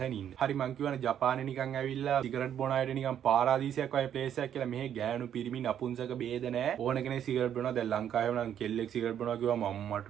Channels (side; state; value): left; quieter; 9.6 dB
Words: ඉන්න. හරි මං කියවනේ ජපානේ නිකන් ඇවිල්ලා සිගරට් බොන අයට නිකන් පාරාදීසයක් වගේ ප්ලේස් එකක් කියලා. මෙහෙ ගෑනු පිරිමි නපුංසක බේද නෑ. ඕන කෙනෙක් සිගරට් බොනවා. දැන් ලංකාවේ නම් කෙල්ලෙක් සිගරට් බොනවා කිව්වම මම්මට